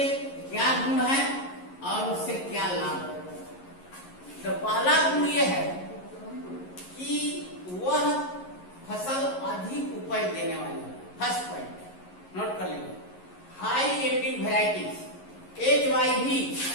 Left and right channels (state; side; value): late; right; 11 ms